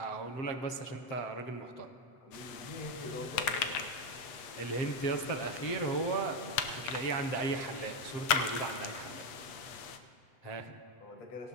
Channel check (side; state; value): right; late; 7.9 ms